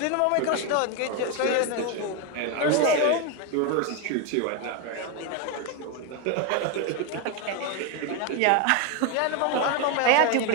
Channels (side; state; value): both; different; correlation 0.02